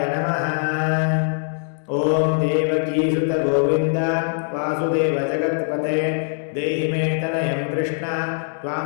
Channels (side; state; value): right; silent; digital silence